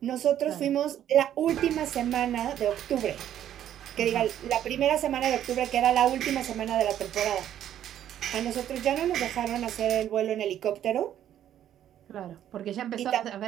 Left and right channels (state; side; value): quieter; left; 10.9 dB